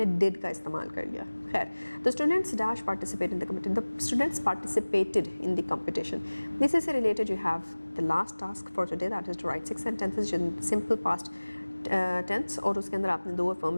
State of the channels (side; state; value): both; inverted; correlation -1.00